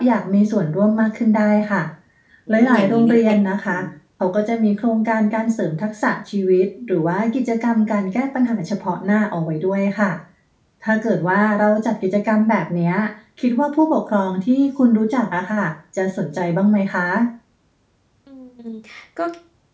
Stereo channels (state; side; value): identical; both; correlation 1.00